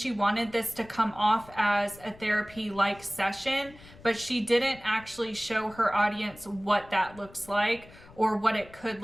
wanted this to come off as a therapy-like session, but she didn't actually show her audience what that looks like or what it could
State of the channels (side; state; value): left; noise; rumble, 22 dB below the sound